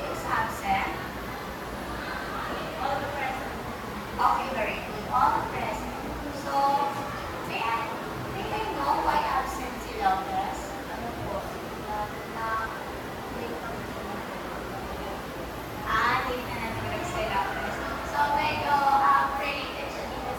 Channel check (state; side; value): identical; both; correlation 1.00